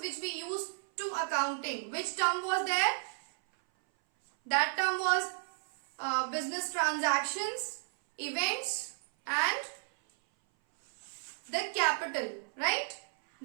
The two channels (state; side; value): silent; left; 56 dB below the other